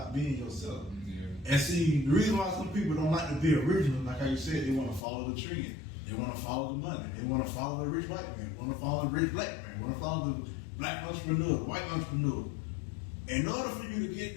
being yourself. Yeah. And see, the reason why some people don't like to be original, like how you said, they want to follow the trend. They want to follow the money. They want to follow the rich white man. They want to follow the rich black man. They want to follow the black entrepreneur, the white entrepreneur. In order for you to get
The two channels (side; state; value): right; drops out; at 5.0 s